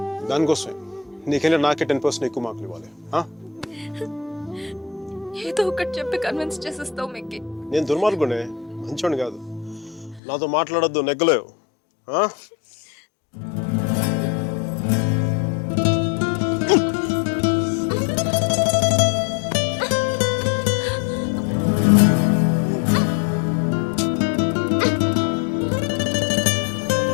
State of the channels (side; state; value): right; drops out; at 10.2 s